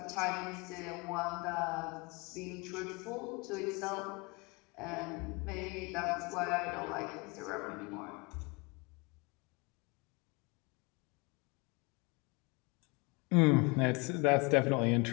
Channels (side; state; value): right; quieter; 28.3 dB